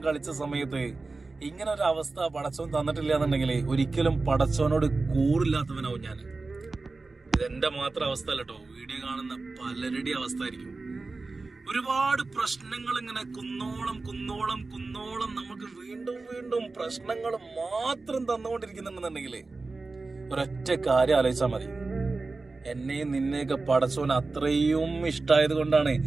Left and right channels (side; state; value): left; quieter; 3.7 dB